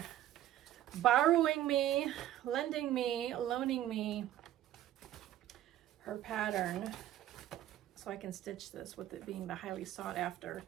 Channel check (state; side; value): quieter; left; 13.0 dB